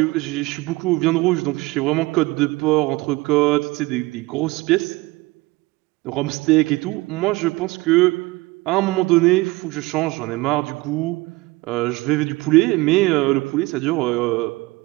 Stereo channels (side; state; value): left; quieter; 21.8 dB